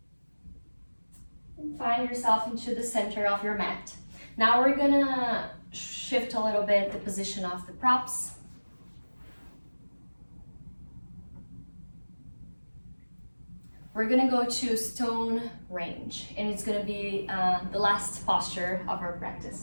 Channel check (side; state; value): both; inverted; correlation -1.00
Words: And find yourself into the center of your mat. Now we're gonna shift a little bit the position of the props. We're gonna go to stone range, and it's gonna be the last posture of our